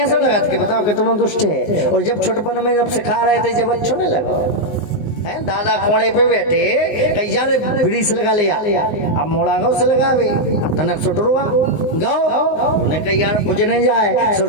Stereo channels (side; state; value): right; late; 19 ms